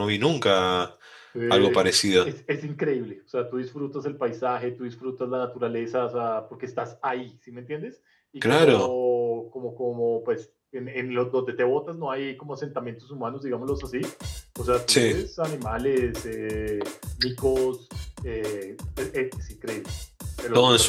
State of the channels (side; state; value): both; identical; correlation 1.00